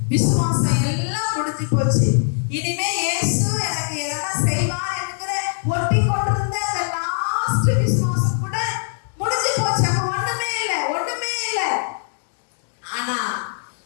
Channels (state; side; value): silent; right; digital silence